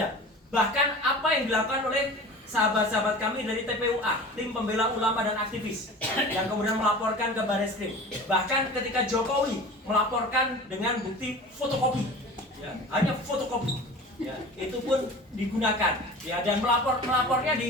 Bahkan apa yang dilakukan oleh sahabat-sahabat kami dari TPUA, tim pembela ulama dan aktivis, yang kemudian melaporkan ke Barreskrim. Bahkan ketika Jokowi melaporkan dengan bukti fotokopi, ya, hanya fotokopi. Ya, itu pun digunakan, ya, dan melapornya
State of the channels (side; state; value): both; normal; correlation 0.38